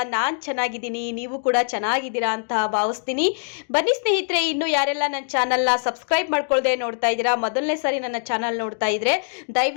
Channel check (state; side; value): silent; right; digital silence